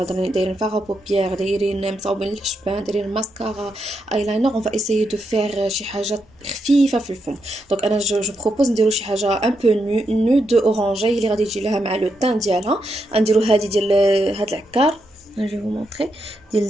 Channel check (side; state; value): both; normal; correlation 0.82